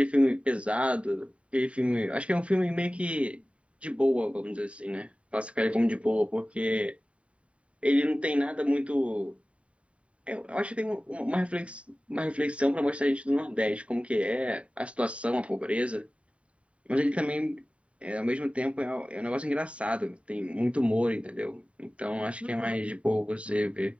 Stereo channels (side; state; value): left; late; 0.063 ms